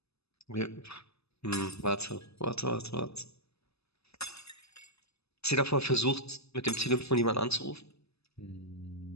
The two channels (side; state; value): right; late; 0.79 ms